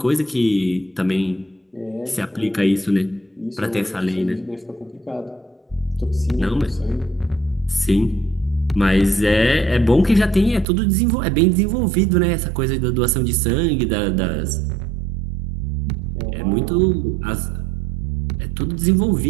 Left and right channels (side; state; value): left; drops out; at 10.7 s